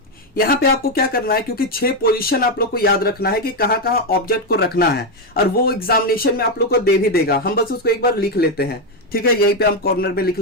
यहां पे आपको क्या करना है, क्योंकि 6 पोजीशन आप लोग को याद रखना है कि कहां कहां ऑब्जेक्ट को रखना है, और वो एग्जामिनेशन में आप लोग को दे भी देगा। हम बस उसको एक बार लिख लेते हैं, ठीक है। यहीं पे हम कॉर्नर में लिख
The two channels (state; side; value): normal; both; correlation 0.06